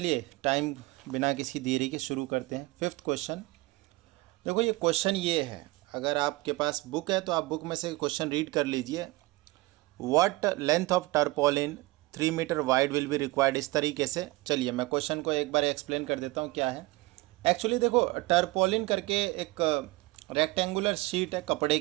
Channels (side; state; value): left; quieter; 21.5 dB